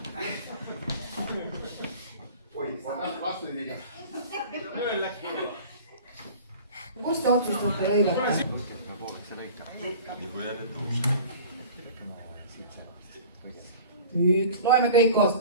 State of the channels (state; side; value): inverted; both; correlation -0.42